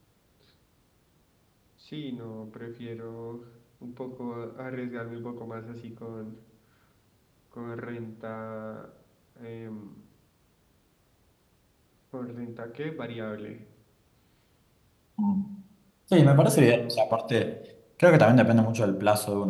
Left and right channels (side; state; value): both; identical; correlation 1.00